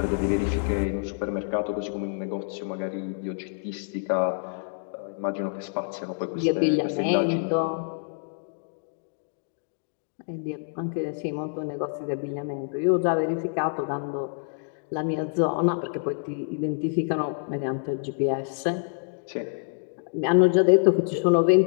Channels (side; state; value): right; silent; digital silence